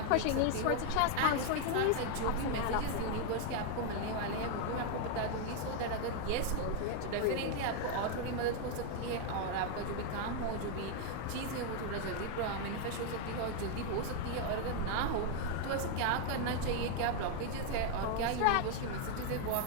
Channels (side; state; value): both; different; correlation 0.00